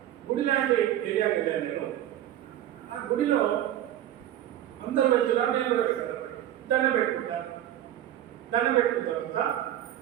గుడి లాంటి ఏరియాకి వెళ్ళాను నేను. ఆ గుడిలో అందరూ వెళ్తున్నారు, నేను కూడా వెళ్తాను. దండం పెట్టుకుంటాను. దండం పెట్టుకున్న తర్వాత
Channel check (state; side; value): quieter; left; 12.2 dB